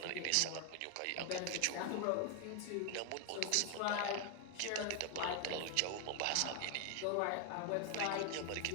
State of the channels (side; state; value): both; different; correlation 0.01